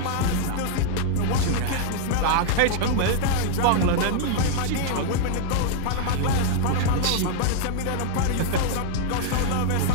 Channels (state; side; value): different; both; correlation 0.00